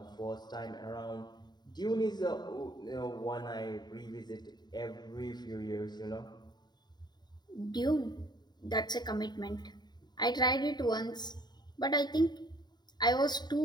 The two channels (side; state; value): right; late; 0.20 ms